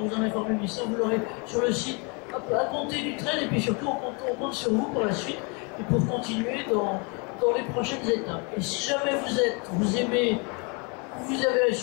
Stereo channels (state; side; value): quieter; right; 32.6 dB